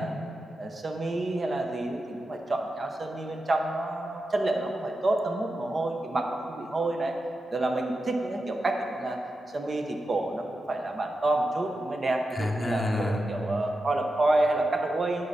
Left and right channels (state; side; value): normal; both; correlation 0.90